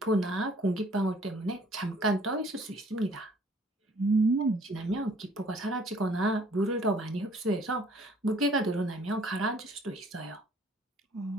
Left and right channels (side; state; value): both; normal; correlation 0.58